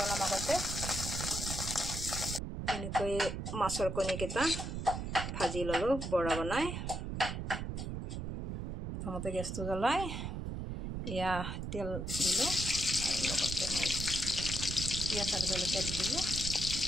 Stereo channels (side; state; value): right; noise; rumble, 4 dB below the sound